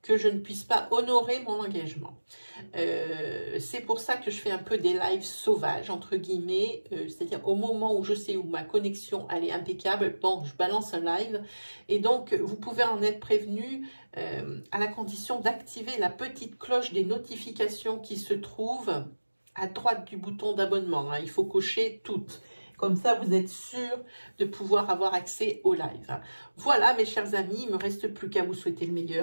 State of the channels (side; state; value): both; inverted; correlation -1.00